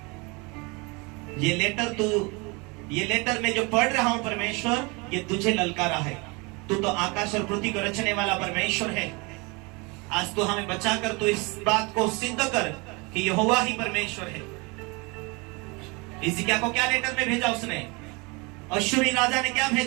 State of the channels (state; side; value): quieter; left; 28.1 dB